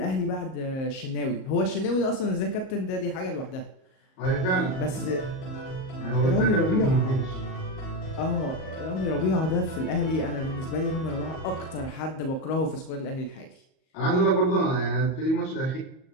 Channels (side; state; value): right; late; 38 ms